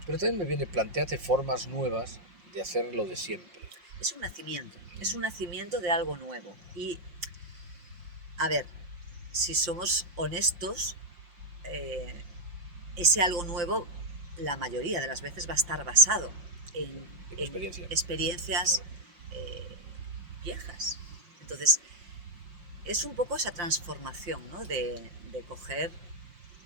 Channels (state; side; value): late; left; 5.6 ms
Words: pero también me viene planteate formas nuevas de hacer lo de siempre. Es un nacimiento de algo nuevo. Y, a ver, si somos honestos, ese algo nuevo, la mayoría de las veces va a estar basado en experiencias viejas. Entonces, es un poco esa transformación, ¿no? De coger